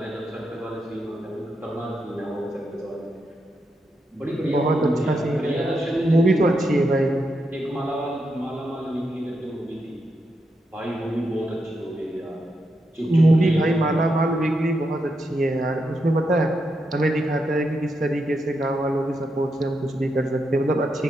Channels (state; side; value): normal; both; correlation 0.83